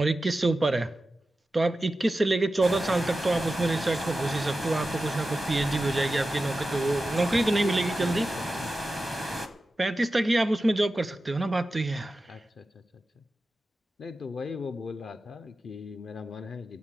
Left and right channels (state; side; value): normal; both; correlation 0.93